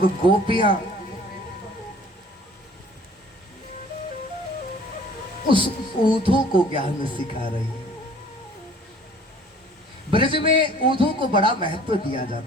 गोपियां उस ऊधो को ज्ञान सिखा रही है। ब्रज में ऊधो को बड़ा महत्व दिया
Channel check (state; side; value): normal; both; correlation 0.51